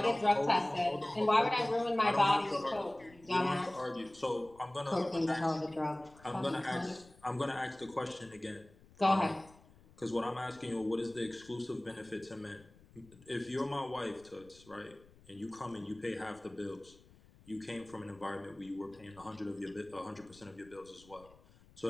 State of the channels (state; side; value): noise; left; rumble, 25 dB below the sound